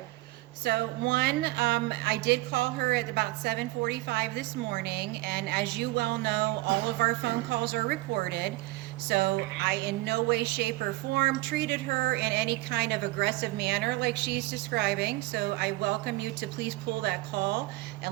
So one, I did call her at about 7:45 this morning, and as you well know, all of our phone calls are recorded. So I in no way, shape, or form treated her in any kind of aggressive manner like she's describing. So I welcome you to please pull that call,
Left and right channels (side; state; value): left; quieter; 19.6 dB